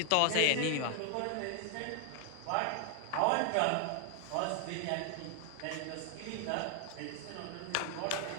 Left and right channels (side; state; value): both; different; correlation 0.00